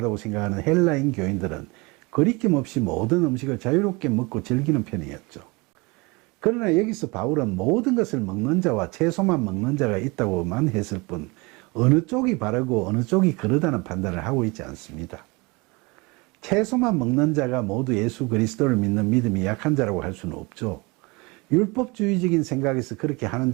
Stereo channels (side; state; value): left; quieter; 26.3 dB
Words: 생각하는 헬라인 교인들은 거리낌 없이 모든 음식을 자유롭게 먹고 즐기는 편이었죠. 그러나 여기서 바울은 모든 것을 먹는 자와 채소만 먹는 자가 있다고만 했을 뿐 어느 쪽이 바르고 어느 쪽이 그르다는 판단을 하고 있지 않습니다. 채소만 먹는 자가 모두 예수 그리스도를 믿는 믿음이 약한 자라고 할 수는 없죠. 율법주의적인 생각에서 그렇게 하는